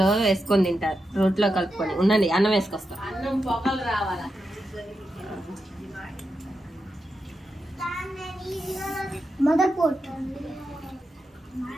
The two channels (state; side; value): normal; both; correlation 0.87